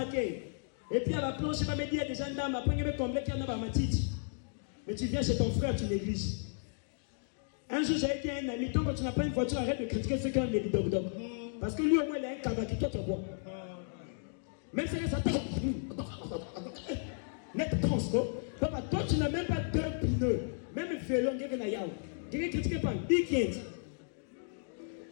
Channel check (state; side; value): silent; right; digital silence